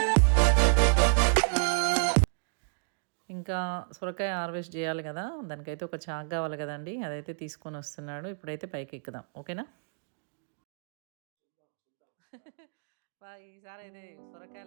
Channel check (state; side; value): silent; left; digital silence